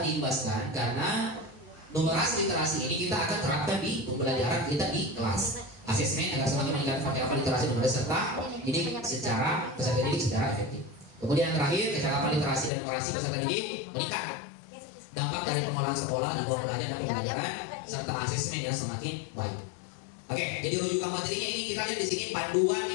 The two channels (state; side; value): drops out; right; at 12.7 s